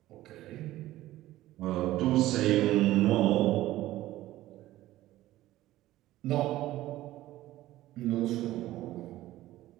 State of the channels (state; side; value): quieter; left; 15.5 dB